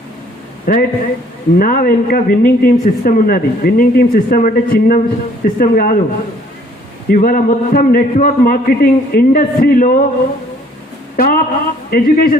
రైట్, నా వెనుక విన్నింగ్ టీమ్ సిస్టమ్ ఉన్నది. విన్నింగ్ టీమ్ సిస్టమ్ అంటే చిన్న సిస్టమ్ కాదు. ఇవాళ మొత్తం నెట్వర్క్ మార్కెటింగ్ ఇండస్ట్రీలో టాప్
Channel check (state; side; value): normal; both; correlation 0.60